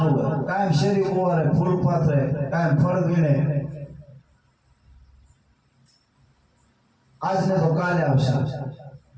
કાયમ શેરી ઉવારે, ફૂલ પાથરે, કાયમ ફળ વીણે. આજને તો કાલે આવશે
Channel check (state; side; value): identical; both; correlation 1.00